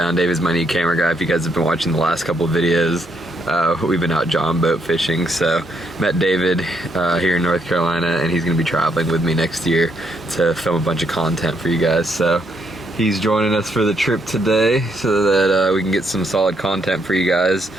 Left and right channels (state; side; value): normal; both; correlation 0.75